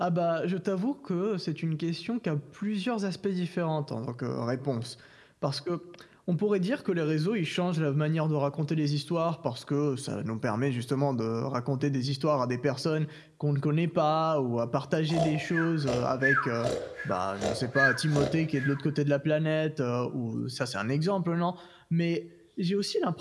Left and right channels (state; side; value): identical; both; correlation 1.00